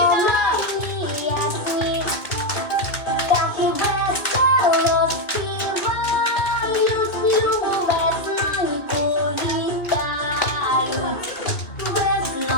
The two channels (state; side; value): late; right; 2.4 ms